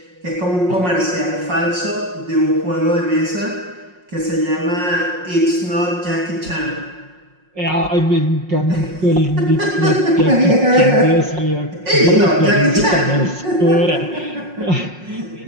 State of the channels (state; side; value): late; left; 5.5 ms